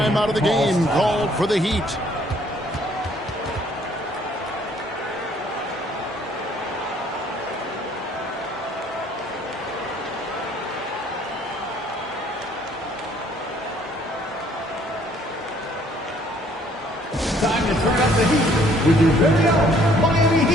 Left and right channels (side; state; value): both; normal; correlation 0.61